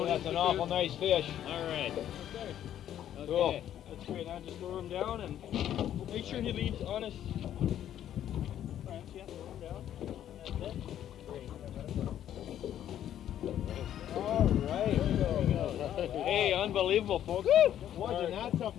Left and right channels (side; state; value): right; quieter; 11.0 dB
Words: That's an awful nice fish. All right. Cool. Okay. That's great. Now just lower him down and make sure he leaves on his branch. Yeah, lower him down. That's it. Great. All right. There we go. Hey, unbelievable, folks. Wasn't that